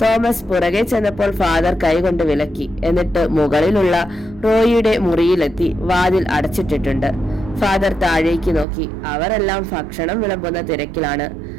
തോമസ് പുറകെ ചെന്നപ്പോൾ ഫാദർ കൈകൊണ്ട് വിലക്കി. എന്നിട്ട് മുകളിലുള്ള റോയിയുടെ മുറിയിലെത്തി. വാതിൽ അടച്ചിട്ടിട്ടുണ്ട്. ഫാദർ താഴേക്ക് നോക്കി. അവരെല്ലാം ഭക്ഷണം വിളമ്പുന്ന തിരക്കിലാണ്.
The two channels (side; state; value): left; drops out; at 8.7 s